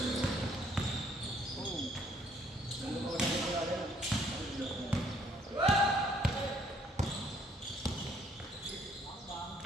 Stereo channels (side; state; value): both; normal; correlation 0.64